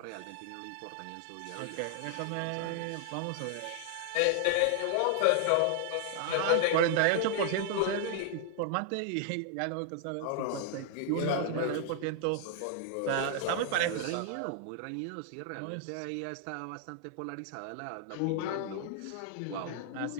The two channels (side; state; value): both; different; correlation 0.00